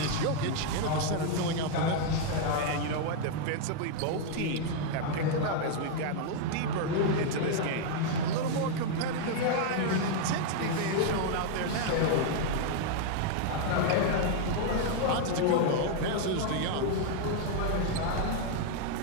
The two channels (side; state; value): both; different; correlation 0.00